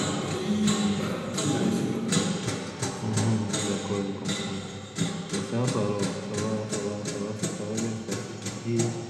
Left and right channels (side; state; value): both; identical; correlation 1.00